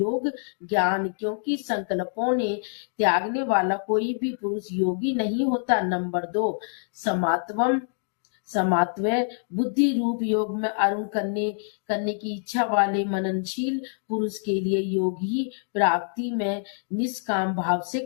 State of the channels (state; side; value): silent; right; digital silence